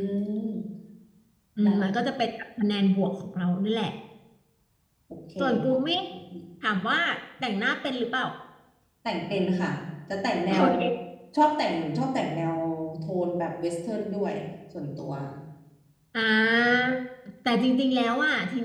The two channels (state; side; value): identical; both; correlation 1.00